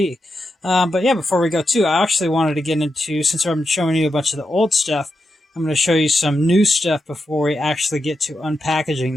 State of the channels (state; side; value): normal; both; correlation 0.87